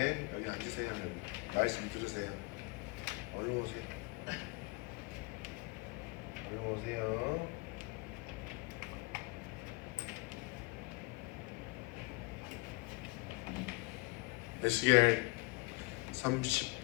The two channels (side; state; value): right; quieter; 26.4 dB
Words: 여기 앉으세요. 말씀 들으세요. 얼른 오세요. 얼른 오세요. 에스겔